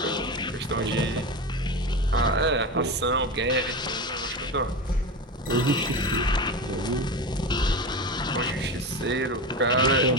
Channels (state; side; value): normal; both; correlation 0.23